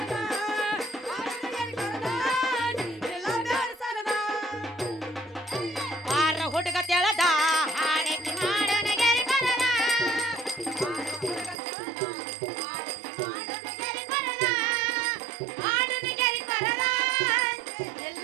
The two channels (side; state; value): left; drops out; at 11.6 s